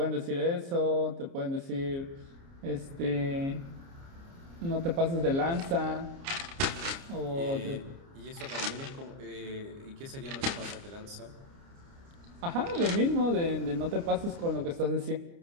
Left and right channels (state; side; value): late; left; 29 ms